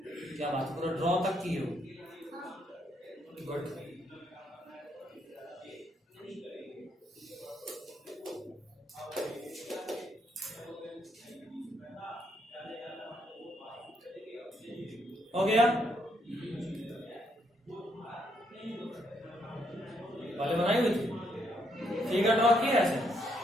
क्या बात, पूरा ड्रॉ तक की हो? गुड। हो गया? पहले बनाई हुई थी, फिगर ड्रॉ किया ऐसे,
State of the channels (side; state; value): both; normal; correlation 0.74